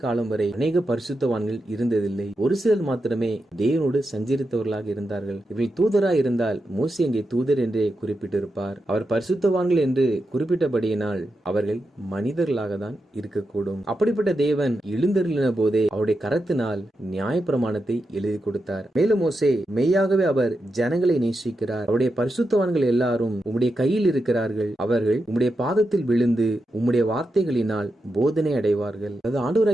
காலம் வரை அநேக பரிசுத்தவான்கள் இருந்ததில்லை. ஒரு சிலர் மாத்திரமே தேவனோடு சஞ்சரித்தவர்களாக இருந்தார்கள். இவர்கள் தூதராய் இருந்தால் மோசே அங்கே தூதர் என்றே குறிப்பிட்டிருப்பார். அவர் பரிசுத்தவான்கள் என்று குறிப்பிட்டபடியினால் அவர்கள் மனிதர்களாக தான் இருக்கக்கூடும். அப்படிப்பட்ட தேவன் எழுந்தருளின போதே அவருடைய கரத்தினால் நியாயப்பிரமாணத்தை எழுதி கொடுத்தார். மேலும் மோசே மெய்யாகவே அவர் ஜனங்களை நேசிக்கிறார். அவருடைய பரிசுத்தவான்கள் எல்லாரும் உம்முடைய கையில் இருக்கிறார்கள். அவர்கள் உம்முடைய பாதத்தில் விழுந்து உம்முடைய வார்த்தைகளினால் போதனை அடைவார்கள். அது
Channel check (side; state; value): both; normal; correlation 0.87